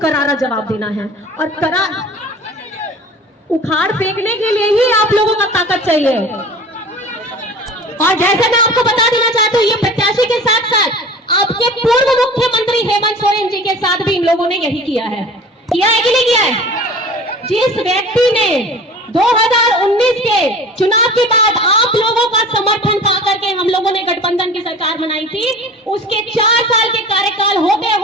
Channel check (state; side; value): normal; both; correlation 0.40